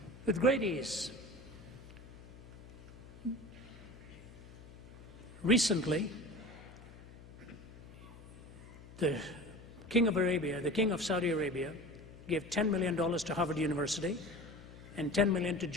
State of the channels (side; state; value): left; noise; hum, 17 dB below the sound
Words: with great ease. Recently, the King of Arabia, the King of Saudi Arabia, gave $10 million to Harvard University and $10 million to